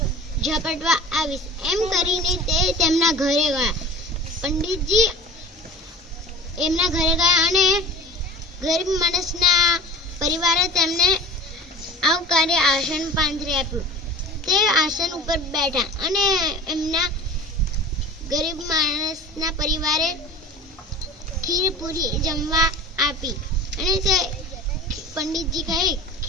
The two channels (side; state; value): both; normal; correlation 0.38